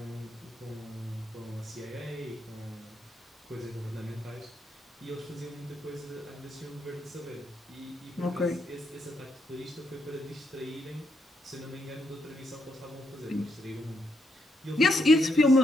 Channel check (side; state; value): both; normal; correlation 0.78